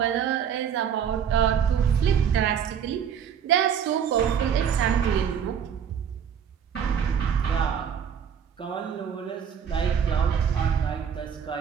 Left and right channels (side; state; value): left; quieter; 8.0 dB